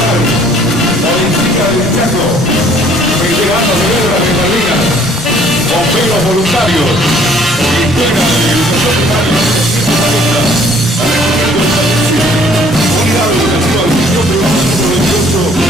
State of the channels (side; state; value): both; normal; correlation 0.58